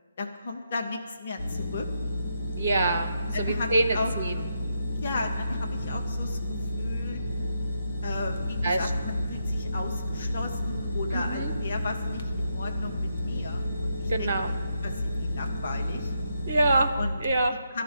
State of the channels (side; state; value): both; inverted; correlation -0.81